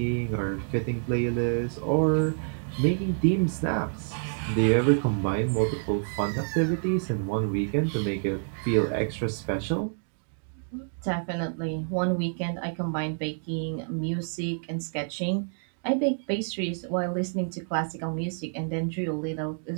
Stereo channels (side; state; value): left; silent; digital silence